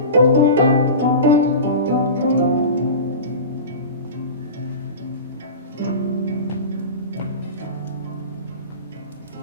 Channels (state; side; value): inverted; both; correlation -0.31